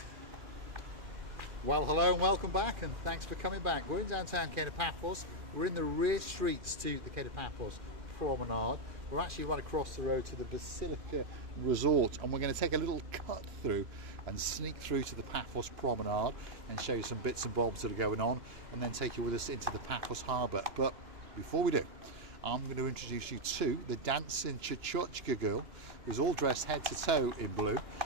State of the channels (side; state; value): left; late; 2.4 ms